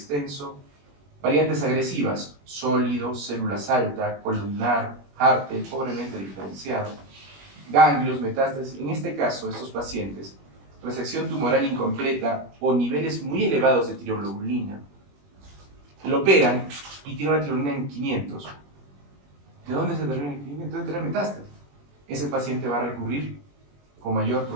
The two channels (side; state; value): left; late; 21 ms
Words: variantes agresivas, sólido, células alta, columnar, Hartel, pobremente diferenciado, ganglios, metástasis. En este caso, estos pacientes, resección tumoral incompleta o niveles muy elevados de tiroglobulina, lo operan y tiene una tiroglobulina en 500. ¿De dónde se determina en 500? Debe tener metástasis. Ese paciente va a recurrir con mayor